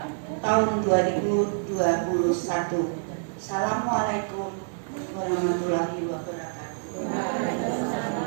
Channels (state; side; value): silent; left; digital silence